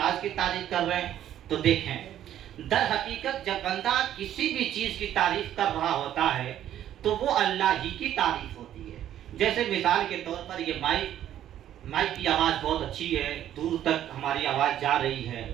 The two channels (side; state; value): left; quieter; 11.4 dB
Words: की तारीफ़ कर रहे हैं। तो देखें, दर हकीकत जब बंदा किसी भी चीज़ की तारीफ़ कर रहा होता है तो वो अल्लाह ही की तारीफ़ होती है। जैसे मिसाल के तौर पर ये माइक की आवाज़ बहुत अच्छी है, दूर तक हमारी आवाज़ जा रही है,